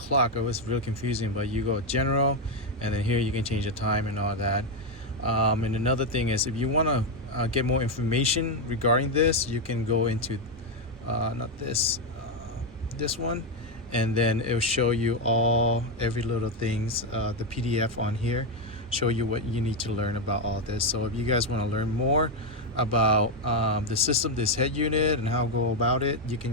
It was really confusing, but you go general, and then here you can change the time and all that. And another thing is, if you want to get more information regarding this, you can go into not this one, and then it will show you every little things, the PDF on here, show you what you need to learn about all this. So if you guys want to learn more about the system, this head unit, and how to go about it, you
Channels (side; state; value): both; normal; correlation 0.05